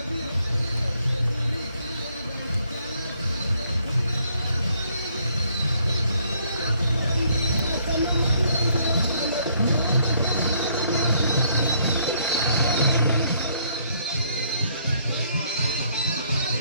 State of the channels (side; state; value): both; inverted; correlation -0.67